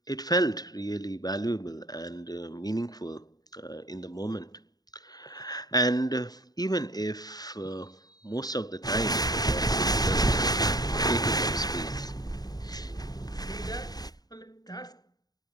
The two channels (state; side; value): late; right; 0.19 ms